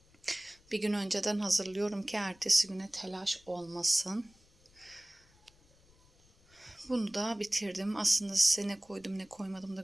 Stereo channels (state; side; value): noise; left; rumble, 29 dB below the sound